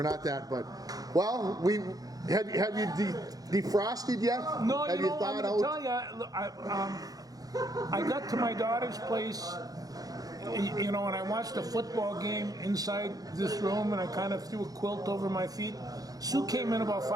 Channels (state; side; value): late; left; 0.18 ms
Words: not that. But we have you defrosted yet? No, have you know, I'm thought going to out? tell you, I got to my daughter's place, you know, and I watched a football game inside this room, and I kind of threw a quilt over my feet. Sue came in about